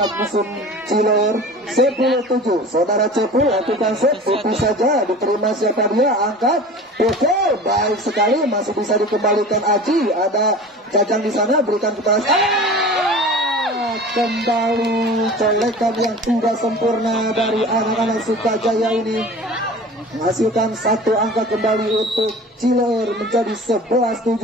musuh Cilor. 10-7. Saudara Cepul lakukan set, tipis saja, diterima siapa dia, angkat, pukul, baik sekali, masih bisa dikembalikan Aji. Ada Jajang di sana, berikan kepada kembali colekan yang tidak sempurna dari anak-anak Sukajaya ini. Menghasilkan satu angka kembali untuk Cilor menjadi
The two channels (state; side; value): normal; both; correlation 0.39